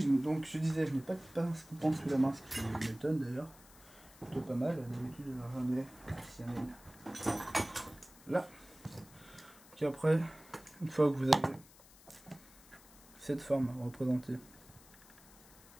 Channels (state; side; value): noise; left; hiss, 23 dB below the sound